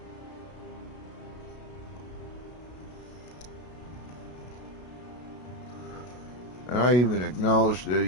And I even acknowledged that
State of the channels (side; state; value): right; late; 33 ms